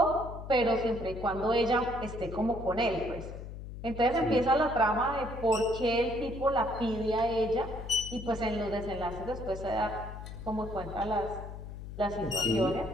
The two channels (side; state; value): left; noise; hum, 10 dB below the sound